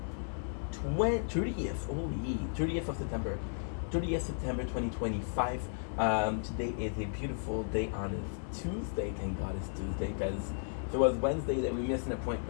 30th of September. 30th September 2025. Today is a beautiful day on this Tuesday. Thank God it's Tuesday, because if it was Wednesday that we missed an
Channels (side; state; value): right; silent; digital silence